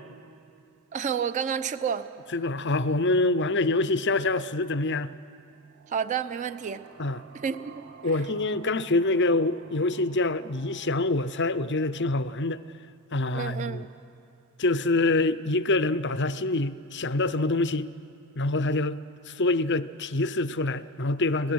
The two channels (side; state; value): both; normal; correlation 0.17